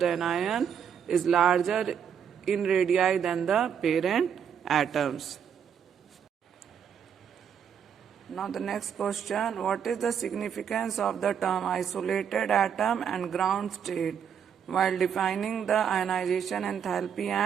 anion is larger in radii than the parent atoms. Now the next question, what is the significance of the term isolated atom and ground state while defining the ionization enthalpy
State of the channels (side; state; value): left; quieter; 8.0 dB